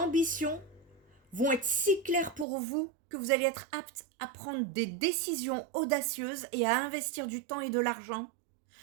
vont être si clairs pour vous que vous allez être apte à prendre des décisions audacieuses et à investir du temps et de l'argent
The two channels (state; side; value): drops out; left; at 2.5 s